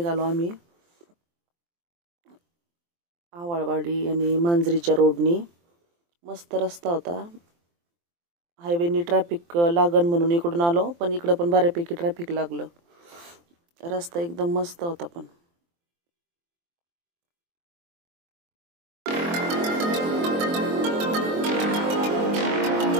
आम्ही. आवाळवाडी आणि मांजरीच्या रोडनी. मस्त रस्ता होता. हायवेनी ट्रॅफिक लागन म्हणून इकडून आलो, पण इकडं पण बऱ्यापैकी ट्रॅफिक लागलं. रस्ता एकदम मस्त होता. पण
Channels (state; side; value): late; left; 23 ms